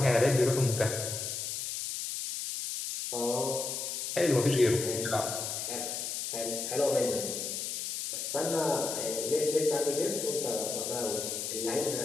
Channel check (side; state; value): left; noise; hiss, 4 dB below the sound